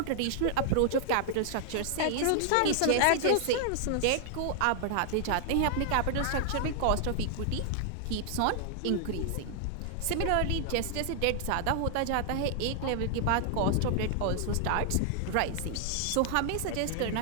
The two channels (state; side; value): different; both; correlation 0.00